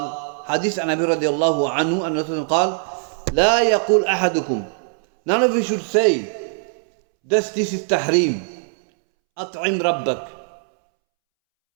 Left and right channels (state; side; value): silent; left; 65 dB below the other